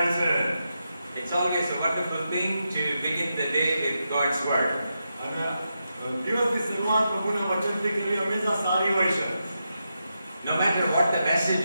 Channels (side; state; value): both; inverted; correlation -0.86